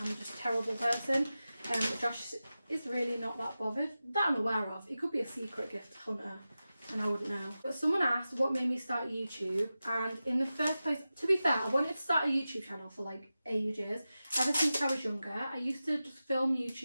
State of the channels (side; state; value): both; inverted; correlation -0.94